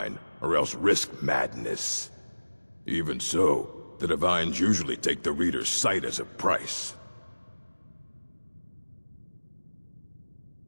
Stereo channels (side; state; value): both; inverted; correlation -1.00